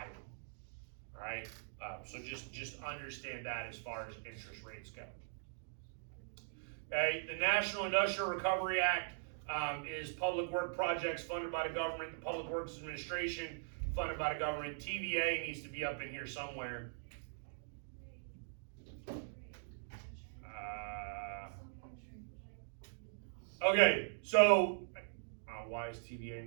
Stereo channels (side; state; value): left; silent; digital silence